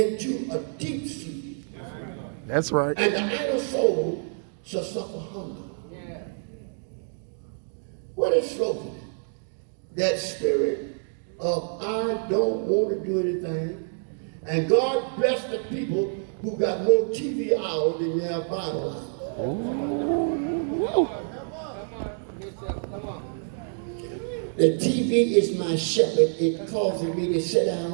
a deep sleep. That's right. And the idle soul shall suffer hunger. What is slothfulness? That spirit of I don't want to do anything. And God bless the people who got more TV hours than they have Bible hours. The TV is my shepherd. It causes me to sit down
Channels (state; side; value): silent; left; 60 dB below the other